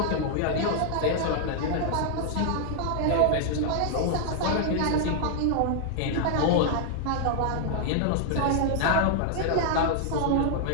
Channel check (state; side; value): different; both; correlation 0.00